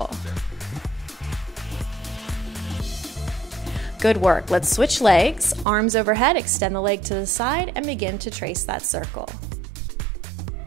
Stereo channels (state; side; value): drops out; left; at 5.7 s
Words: Good work. Let's switch legs. Arms overhead, extend the leg to the side and begin to trace that circle.